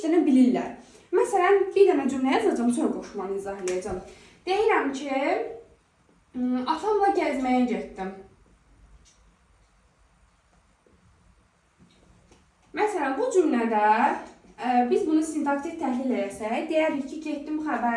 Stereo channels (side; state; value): both; identical; correlation 1.00